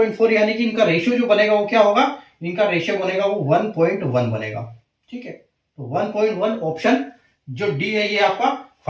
यानी कि इनका रेशियो जो बनेगा वो क्या होगा, इनका रेशियो बनेगा वो 1.1 बनेगा। ठीक है, तो 1.1 ऑप्शन जो डी है ये आपका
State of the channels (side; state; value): both; identical; correlation 1.00